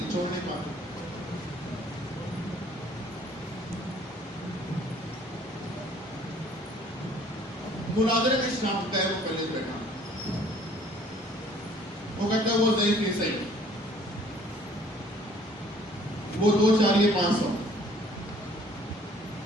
چھوڑ نہیں پاتے. مناظرے میں شام غیر مقلد بیٹھا، وہ کہتا ہے وہ ضعیف نہیں صحیح، وہ 2 4 یہ 500.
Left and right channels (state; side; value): normal; both; correlation 0.57